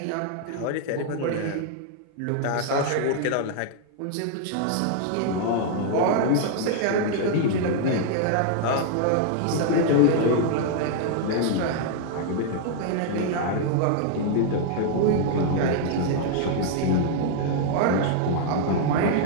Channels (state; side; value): different; both; correlation -0.01